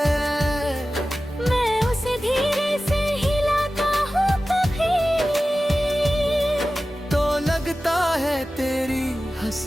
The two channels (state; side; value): normal; both; correlation 0.95